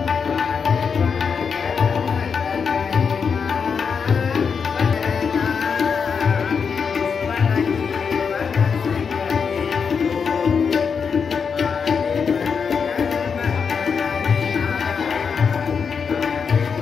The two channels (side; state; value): right; quieter; 6.1 dB